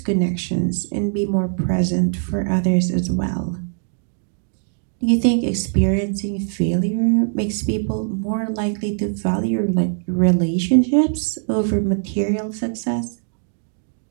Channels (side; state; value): left; silent; digital silence